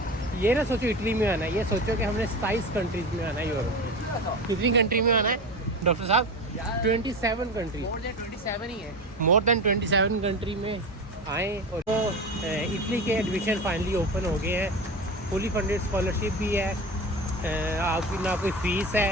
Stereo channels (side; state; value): both; normal; correlation 0.27